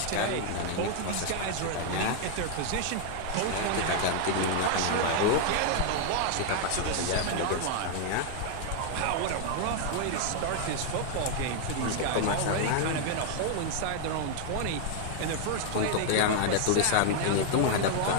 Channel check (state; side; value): different; both; correlation 0.00